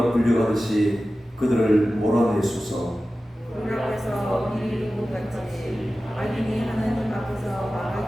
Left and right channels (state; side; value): normal; both; correlation 0.95